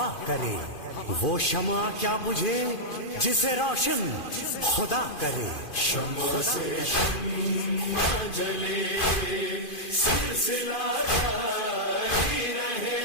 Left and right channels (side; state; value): right; late; 2.5 ms